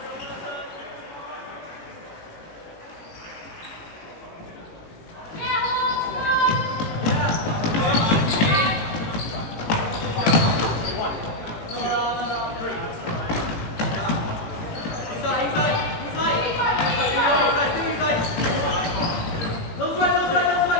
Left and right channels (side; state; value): right; late; 18 ms